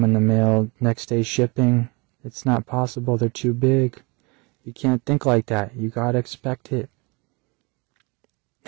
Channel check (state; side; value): quieter; left; 28.2 dB